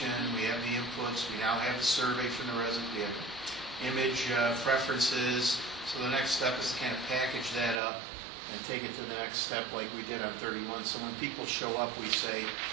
we have the inputs, we now have the survey from the residents, we have image preferences. So the next step is to kind of package that up and take it to the next step like we did on 31. So when people show up, we say,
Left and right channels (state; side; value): drops out; left; at 7.8 s